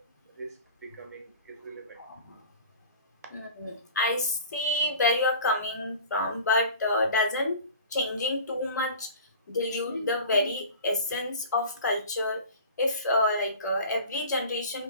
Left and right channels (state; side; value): inverted; both; correlation -0.40